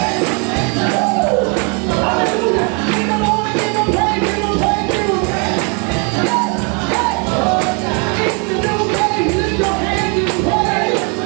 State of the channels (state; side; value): quieter; left; 34.6 dB